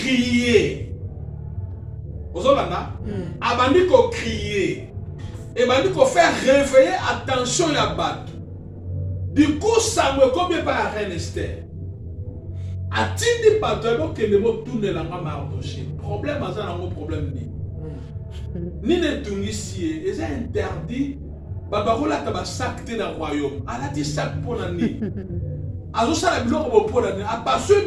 Ozolanda? Abandi ko crier. Et abandi ko faire réveiller attention ya bato. Du coup, ça me combien par reine Esther. Atindi bato ebo kende mo tourner la Mardoché. Problème aza na mo problème ni. Ni ne tungisi eza interdit. Babarola ka ba sac te na royaume. Ala ti sac pona ni. Azosala biloko bo pona ni. Apaso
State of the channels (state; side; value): identical; both; correlation 1.00